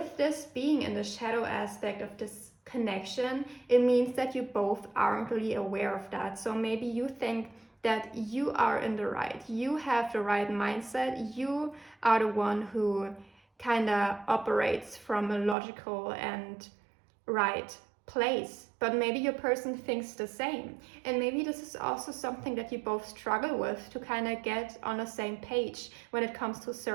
this being in the shadow aspect of this connection, it means that you both aren't really aware of that. So maybe you think that you are in the right, you have the right mindset, you are the one who kind of operates from a logical and right place, but maybe your person thinks the same. And maybe this is also something that you both struggle with, to kind of get on the same page when it comes to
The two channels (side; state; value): left; drops out; at 15.6 s